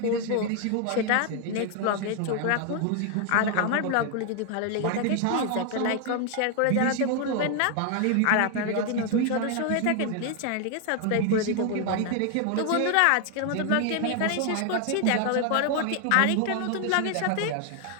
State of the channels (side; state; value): both; different; correlation 0.00